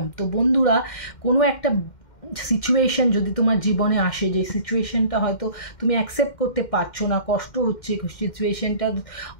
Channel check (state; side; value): late; right; 2.1 ms